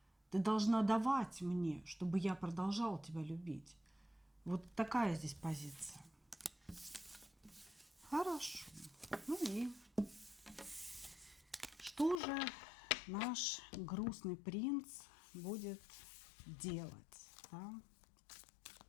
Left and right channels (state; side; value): drops out; right; at 12.2 s